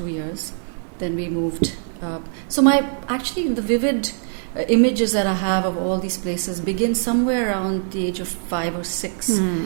years. Then we moved. So the vivid images that I have of all these places begin somewhere around the age of 5 or 6.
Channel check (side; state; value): left; silent; digital silence